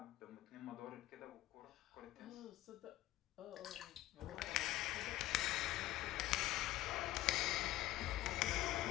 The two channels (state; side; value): quieter; right; 15.6 dB